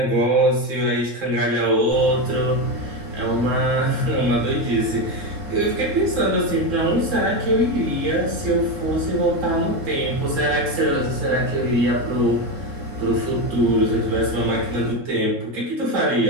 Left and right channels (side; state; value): left; late; 3.7 ms